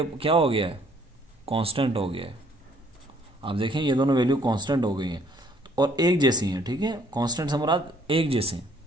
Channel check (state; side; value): normal; both; correlation 0.63